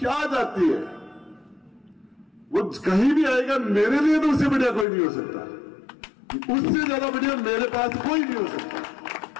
जाती है, वो कहीं भी आएगा, मेरे लिए तो उससे बढ़िया कोई नहीं हो सकता, उससे ज्यादा बढ़िया मेरे पास कोई नहीं हो सकता।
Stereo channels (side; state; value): right; drops out; at 4.9 s